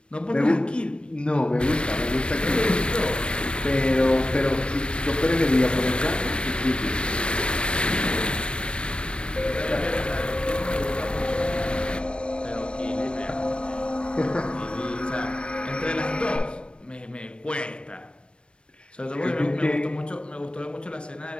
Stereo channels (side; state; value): right; late; 0.057 ms